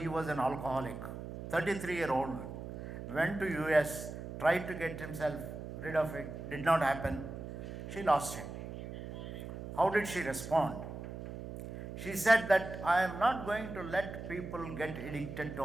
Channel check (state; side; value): noise; right; hum, 9 dB below the sound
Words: was an alcoholic. 33-year-old, went to US, tried to get himself rid of it, did not happen. She lost him. How did she respond? She said that I am not going to let people get addicted to